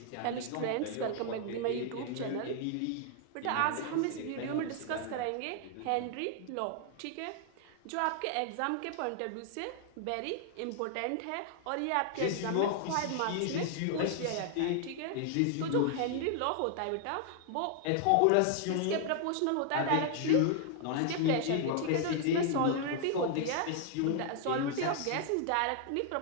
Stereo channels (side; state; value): both; different; correlation 0.00